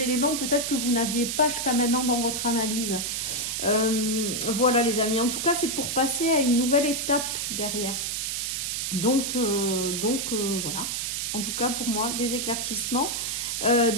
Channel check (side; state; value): right; noise; hiss, 2 dB below the sound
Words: éléments peut-être que vous n'aviez pas jusqu'à maintenant dans votre analyse. Voilà les amis, en tout cas c'est pour passer à une nouvelle étape derrière. Donc voilà, en tout cas pour moi, des éclaircissements,